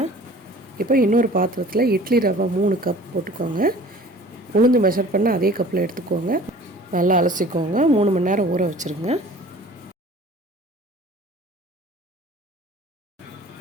இப்போ இன்னொரு பாத்திரத்தில் இட்லி ரவை 3 கப் போட்டுக்கோங்க. உளுந்து மெஷர் பண்ண அதே கப்பில் எடுத்துக்கோங்க. நல்லா அலசிக்கோங்க. 3 மணி நேரம் ஊற வச்சுருங்க.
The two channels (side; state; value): both; normal; correlation 0.47